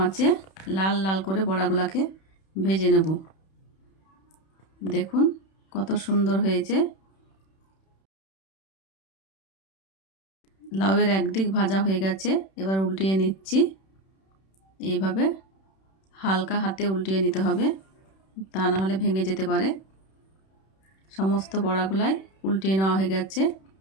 আঁচে লাল লাল করে বড়াগুলাকে ভেজে নেব। দেখুন কত সুন্দর হয়েছে। লাউয়ের একদিক ভাজা হয়ে গেছে, এবার উল্টিয়ে নিচ্ছি। এইভাবে হালকা হাতে উল্টিয়ে নিতে হবে, তা না হলে ভেঙে যেতে পারে। সমস্ত বড়াগুলাই উল্টিয়ে নেওয়া হয়ে গেছে।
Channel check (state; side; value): late; right; 31 ms